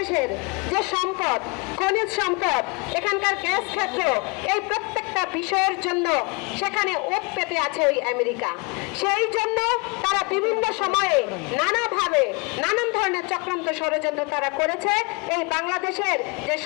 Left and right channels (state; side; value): quieter; right; 29.7 dB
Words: যে সম্পদ, খনিজ সম্পদ, এখানকার গ্যাস ক্ষেত্র, এই প্রত্যেকটা বিষয়ের জন্য সেখানে ওত পেতে আছে ওই আমেরিকা। সেই জন্য তারা বিভিন্ন সময়ে নানাভাবে নানান ধরনের চক্রান্ত ষড়যন্ত্র তারা করেছে এই বাংলাদেশের যে